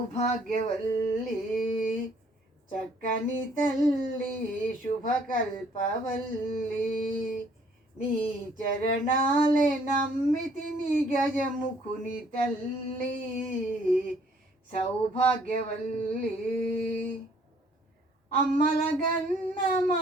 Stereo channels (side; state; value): both; normal; correlation 0.62